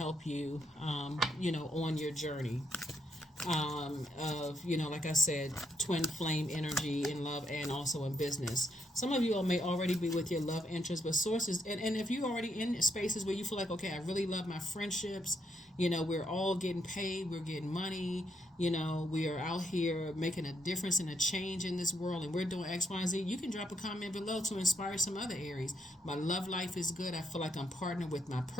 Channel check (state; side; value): normal; both; correlation 0.77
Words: you, on your journey of, like I said, twin flame energy in love and also in business. Some of you all may already be with your love interest, but Sources, and if you're already in spaces where you feel like, okay, I really love my friendships, we're all getting paid, we're getting money, we are out here making a difference and a change in this world, and we're doing X, Y, and Z, you can drop a comment below to inspire some other Aries. My love life is good. I feel like I'm partnered with my